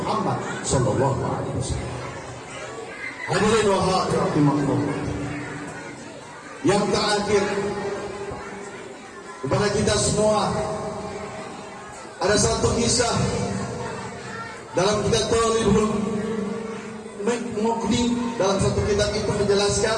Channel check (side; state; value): both; identical; correlation 1.00